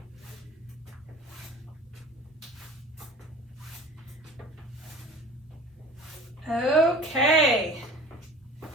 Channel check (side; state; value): both; normal; correlation 0.42